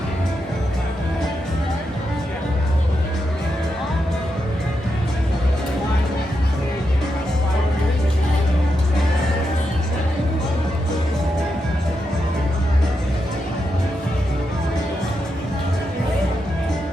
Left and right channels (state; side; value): normal; both; correlation 0.85